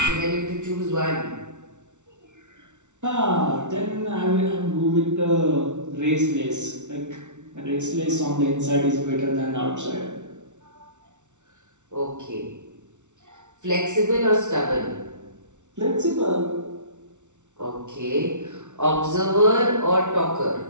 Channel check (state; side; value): late; left; 0.84 ms